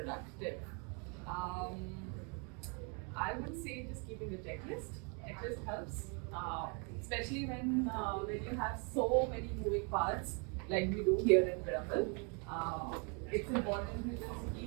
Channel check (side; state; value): left; quieter; 35.6 dB